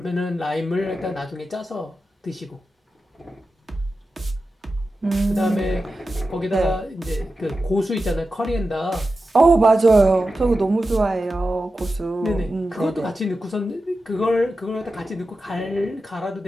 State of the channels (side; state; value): both; normal; correlation 0.92